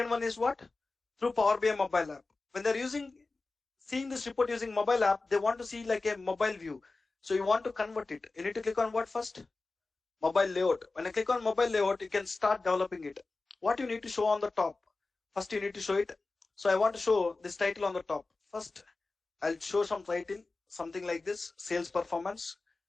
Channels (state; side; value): quieter; right; 3.6 dB